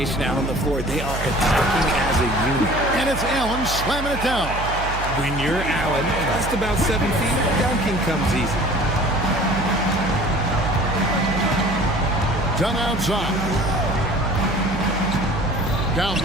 out on the floor. They are attacking as a unit. And it's Allen slamming it down. When you're Allen, just about 7 feet, dunking comes easy. Done outside. Down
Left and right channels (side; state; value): right; noise; hum, 7 dB below the sound